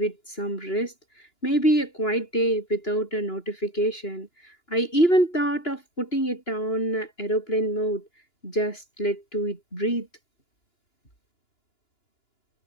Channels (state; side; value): late; right; 2.9 ms